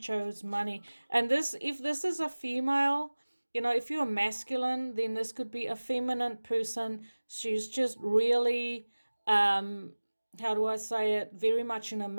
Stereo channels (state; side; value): inverted; both; correlation -1.00